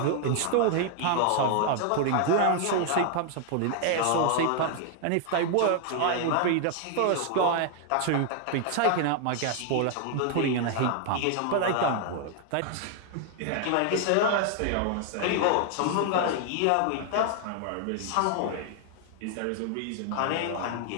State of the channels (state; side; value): different; both; correlation 0.00